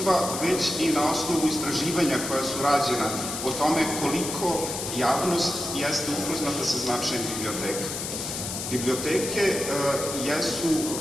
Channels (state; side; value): noise; left; hiss, 5 dB below the sound